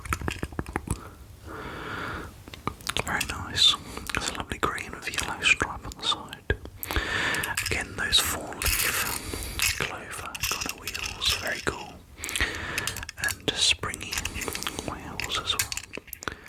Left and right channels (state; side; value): identical; both; correlation 1.00